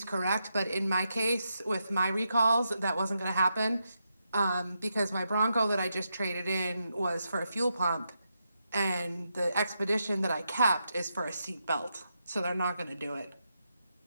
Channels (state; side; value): inverted; both; correlation -0.84